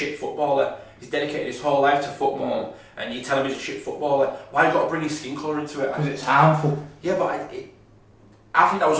footballer. He's dedicated his whole life to football, and you tell him he's a shit footballer. Why you got to bring his skin colour into it? Because it's harmful. Yeah, but I think that was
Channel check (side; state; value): both; identical; correlation 1.00